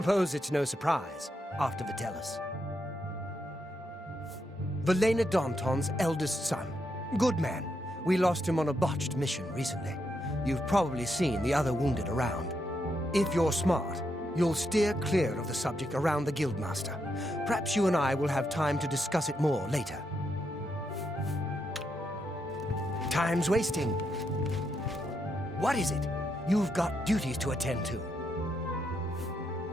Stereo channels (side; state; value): both; normal; correlation 0.81